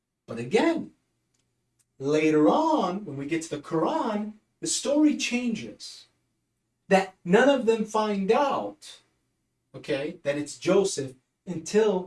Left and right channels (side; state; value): both; identical; correlation 1.00